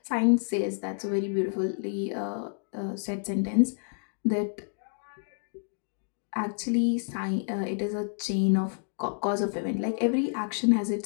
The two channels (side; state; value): right; silent; digital silence